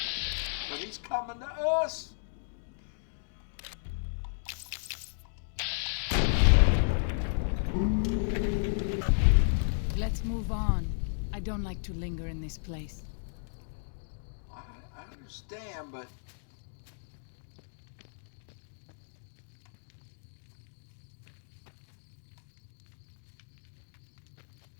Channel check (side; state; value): right; silent; digital silence